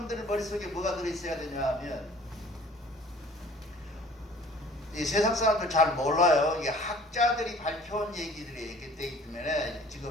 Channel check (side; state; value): both; normal; correlation 0.51